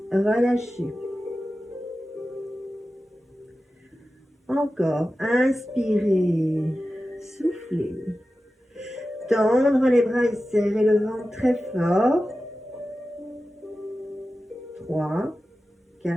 relâchez. Encore, inspirez, soufflez. Tendre les bras et serrer le ventre très fort. 3, 4,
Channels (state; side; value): normal; both; correlation 0.94